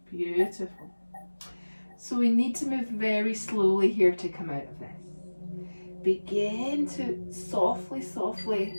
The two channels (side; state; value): both; inverted; correlation -1.00